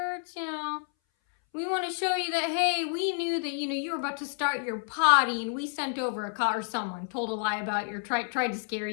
you know. We want to show you that, hey, we knew that, you know, you were about to start your potty and we sent over a car, or someone told a lie about your, tried to scare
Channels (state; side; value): silent; right; 58 dB below the other